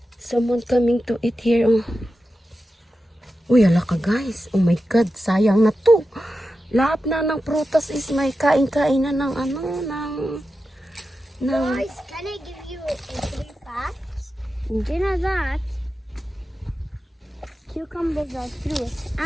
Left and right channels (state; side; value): normal; both; correlation 0.91